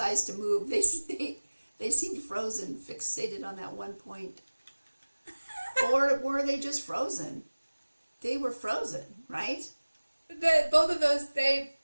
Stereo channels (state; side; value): inverted; both; correlation -1.00